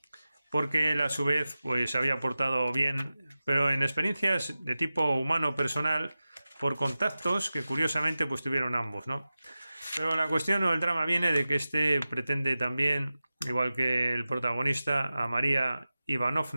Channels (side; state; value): both; inverted; correlation -0.95